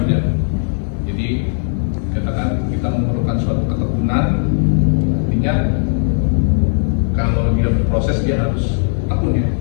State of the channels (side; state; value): right; silent; 68 dB below the other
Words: Jadi katakan kita memerlukan suatu ketekunan, artinya kalau dia berproses dia harus tekun ya,